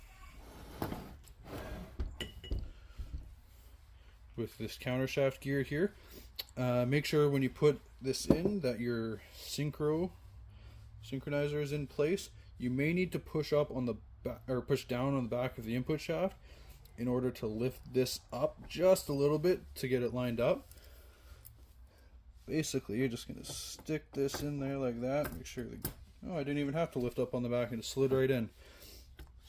With this counter shaft gear here. Make sure when you put this in that your synchronizer is in place. You may need to push up on the back, or push down on the back of the input shaft in order to lift this up just a little bit to get it lined up. Basically, you're just gonna stick this in there like that. Make sure I didn't even have to lift up on the back, and it slid right in.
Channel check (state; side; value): identical; both; correlation 1.00